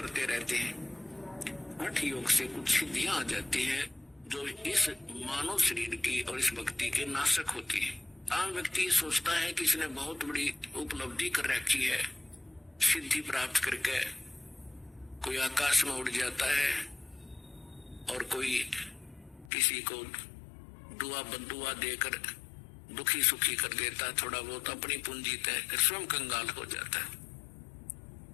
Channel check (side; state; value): right; drops out; at 19.5 s